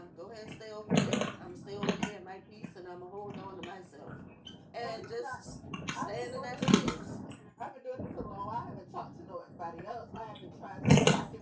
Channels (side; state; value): both; identical; correlation 1.00